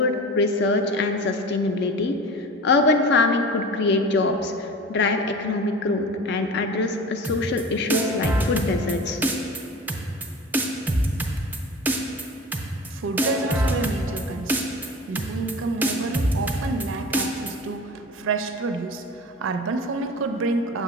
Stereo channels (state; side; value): normal; both; correlation 0.35